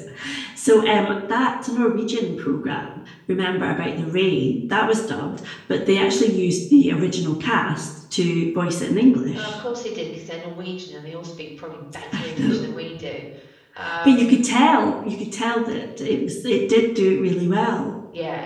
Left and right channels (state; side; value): identical; both; correlation 1.00